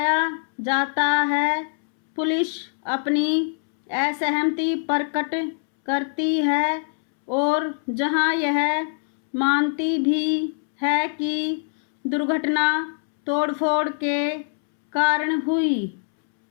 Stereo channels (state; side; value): silent; right; 63 dB below the other